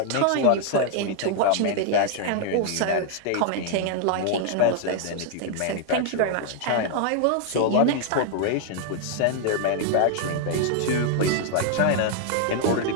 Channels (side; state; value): both; different; correlation 0.00